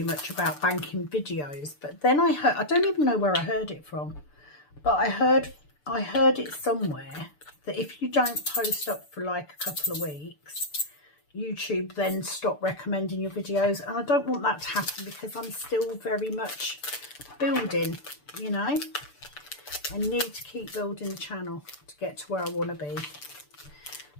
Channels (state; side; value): late; right; 6.8 ms